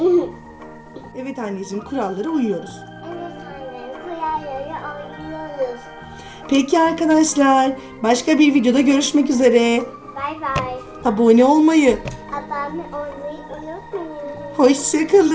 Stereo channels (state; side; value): identical; both; correlation 1.00